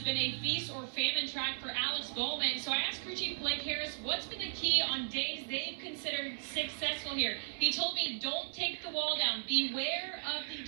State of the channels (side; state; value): left; silent; 54 dB below the other